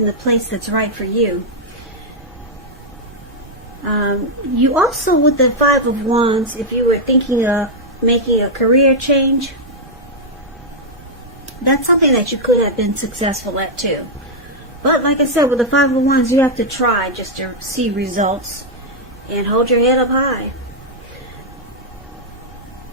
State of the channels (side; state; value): right; noise; rumble, 22 dB below the sound